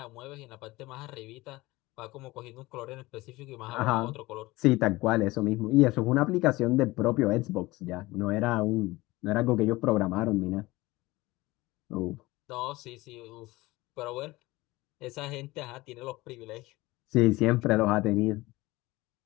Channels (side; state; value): right; quieter; 20.2 dB